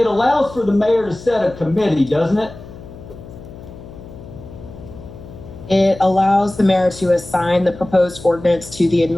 allows for the mayor to set a committee, doesn't it? It allows the mayor to assign the proposed ordinance to the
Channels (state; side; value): noise; left; hum, 16 dB below the sound